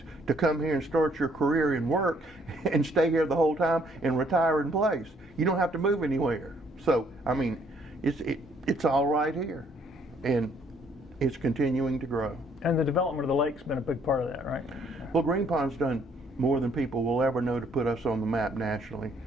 to come here and start your career and work and stay here the whole time and retire in place. You don't have to move anywhere. So, I mean, it's all right here. And it's continuing to grow. And the development of the lake's been a big part of that, right? Well, Green Pond's done more than people will ever know to put us on the map nationally.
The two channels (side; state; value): both; normal; correlation 0.65